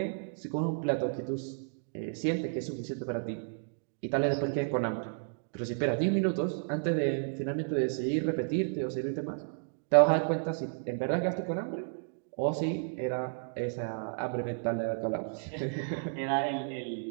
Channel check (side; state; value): left; silent; digital silence